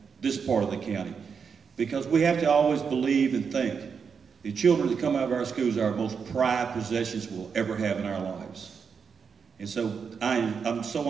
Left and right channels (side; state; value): left; quieter; 6.1 dB